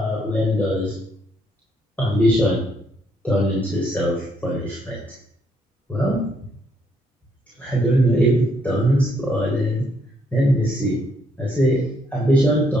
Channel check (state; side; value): normal; both; correlation 0.72